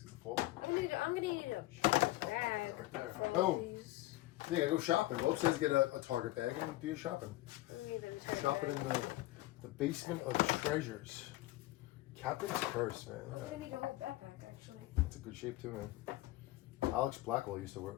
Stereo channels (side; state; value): right; quieter; 17.8 dB